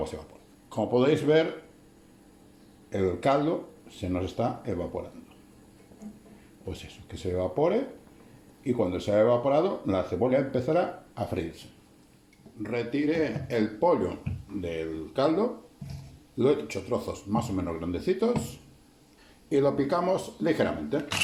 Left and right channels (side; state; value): both; identical; correlation 1.00